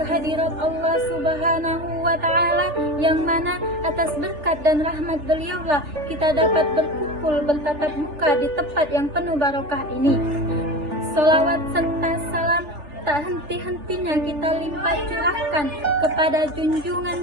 Allah Subhanahu wa Ta'ala, yang mana atas berkat dan rahmat beliaulah kita dapat berkumpul bertatap muka di tempat yang penuh barokah ini. Salawat serta salam tak henti-hentinya kita limpah curahkan kepada junjungan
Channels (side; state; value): left; late; 3.4 ms